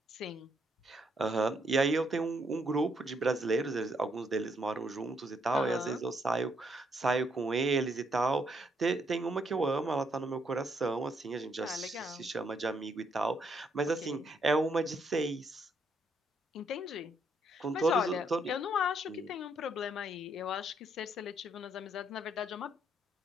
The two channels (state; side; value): normal; both; correlation 0.73